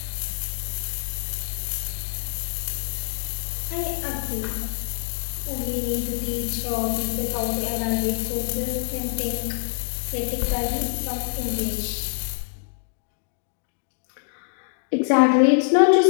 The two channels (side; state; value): right; silent; digital silence